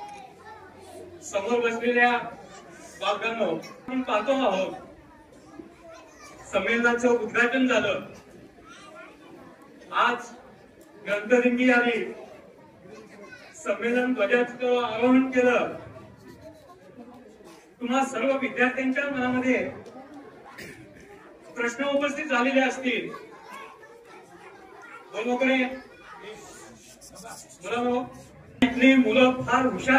समोर बसलेल्या बालकांनो, आपण पाहतो आहोत संमेलनाचं उद्घाटन झालं, आज ग्रंथदिंडी आली, संमेलन ध्वजाचं आरोहण केलं। तुम्हा सर्व विद्यार्थ्यांच्या मनामध्ये प्रश्न उपस्थित झालेले असतील। इथली मुलं फार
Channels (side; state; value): both; identical; correlation 1.00